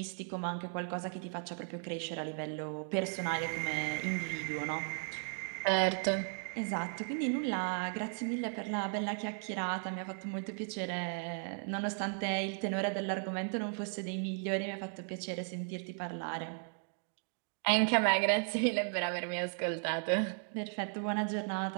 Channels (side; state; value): left; silent; 54 dB below the other